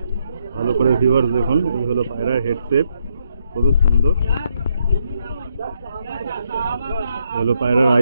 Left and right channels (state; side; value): inverted; both; correlation -0.76